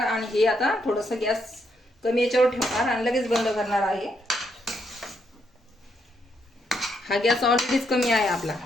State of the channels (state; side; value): normal; both; correlation 0.76